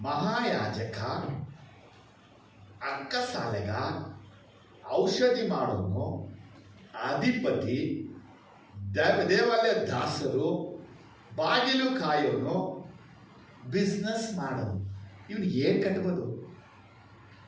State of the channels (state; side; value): identical; both; correlation 1.00